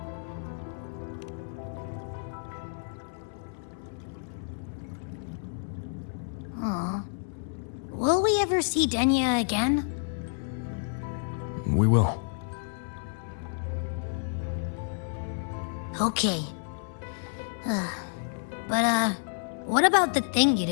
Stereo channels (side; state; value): right; silent; 58 dB below the other